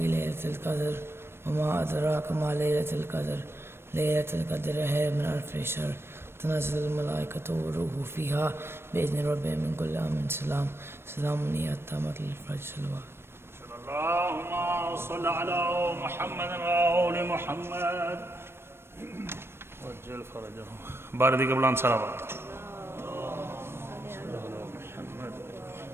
ليلة القدر وما أدراك ما ليلة القدر ليلة القدر خير من ألف شهر تنزل الملائكة والروح فيها بإذن ربهم من كل أمر سلام سلام هي حتى مطلع الفجر صلوات اللهم صل على محمد وآل محمد وجل فرجهم باردی کے بلند صلوات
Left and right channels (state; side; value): late; left; 0.12 ms